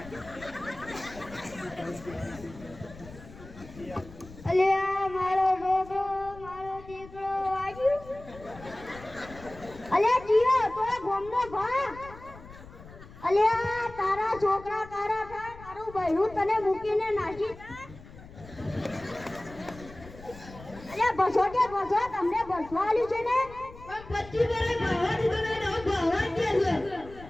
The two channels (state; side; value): noise; left; rumble, 18 dB below the sound